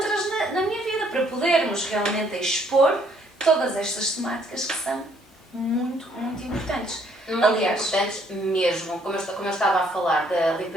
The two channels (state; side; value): normal; both; correlation 0.66